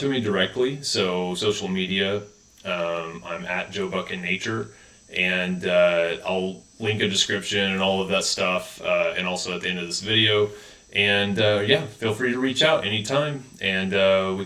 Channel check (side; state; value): both; identical; correlation 1.00